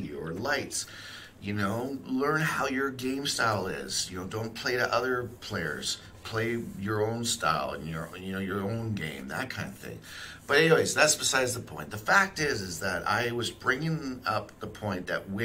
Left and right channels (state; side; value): identical; both; correlation 1.00